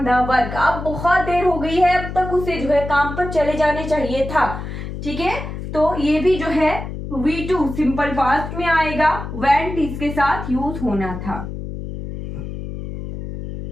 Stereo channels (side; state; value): left; noise; hum, 8 dB below the sound